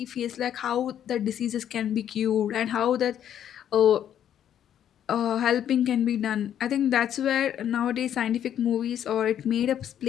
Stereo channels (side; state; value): right; quieter; 10.0 dB